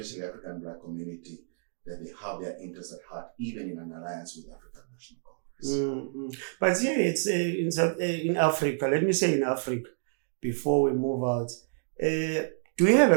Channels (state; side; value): silent; left; digital silence